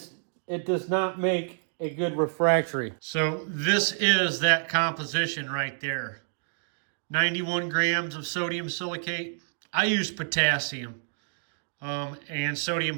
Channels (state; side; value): silent; left; digital silence